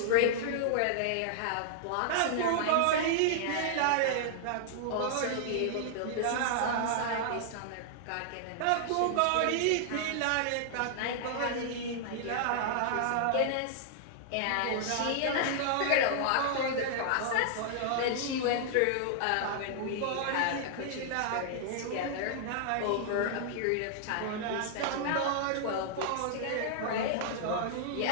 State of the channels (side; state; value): both; different; correlation -0.01